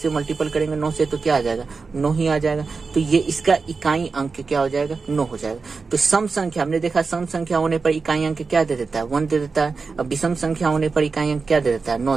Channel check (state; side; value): quieter; left; 4.6 dB